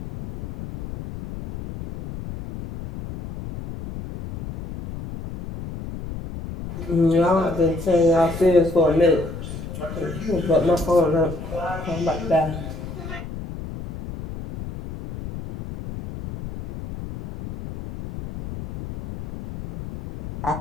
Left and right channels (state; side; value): noise; left; rumble, 10 dB below the sound